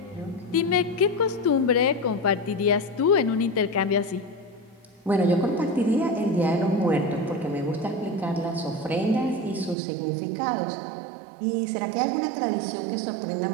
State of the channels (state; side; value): drops out; left; at 9.8 s